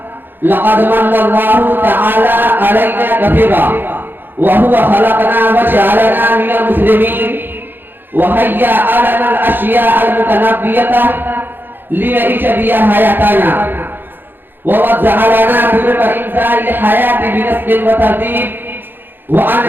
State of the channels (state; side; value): late; left; 0.098 ms